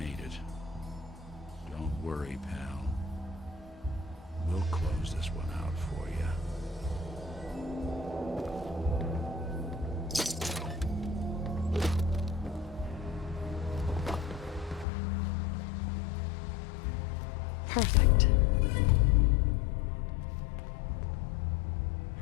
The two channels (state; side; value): drops out; right; at 14.9 s